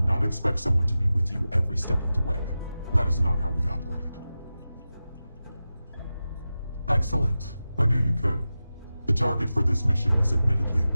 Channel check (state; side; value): inverted; both; correlation -0.94